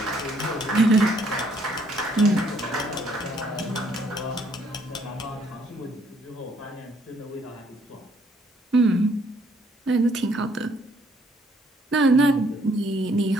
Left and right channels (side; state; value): both; normal; correlation 0.66